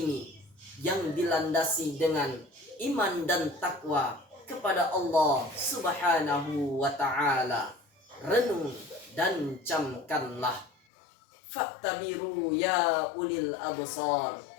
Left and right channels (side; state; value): right; drops out; at 10.7 s